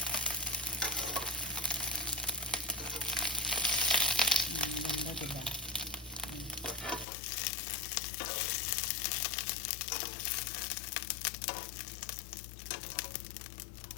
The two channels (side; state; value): right; drops out; at 7.1 s